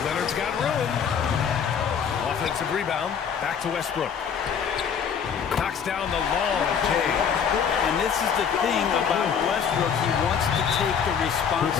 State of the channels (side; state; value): right; quieter; 7.2 dB